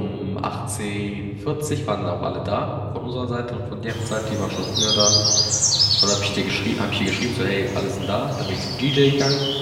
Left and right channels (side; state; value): both; identical; correlation 1.00